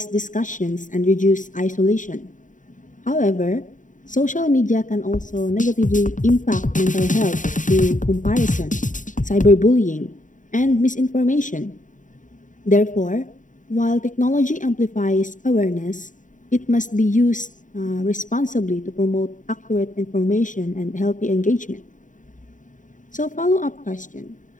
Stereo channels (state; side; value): late; right; 0.37 ms